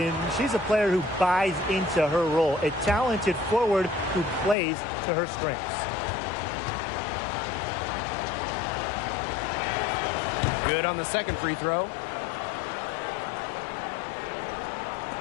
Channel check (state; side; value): drops out; right; at 4.5 s